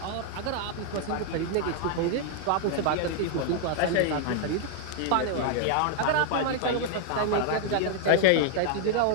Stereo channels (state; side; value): different; both; correlation -0.01